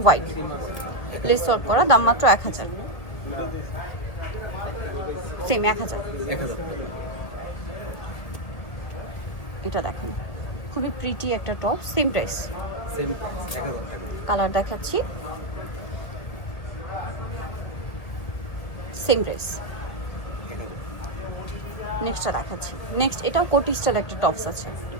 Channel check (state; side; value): late; right; 1.8 ms